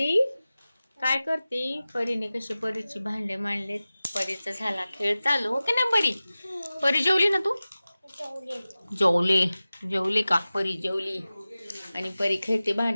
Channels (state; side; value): inverted; both; correlation -0.97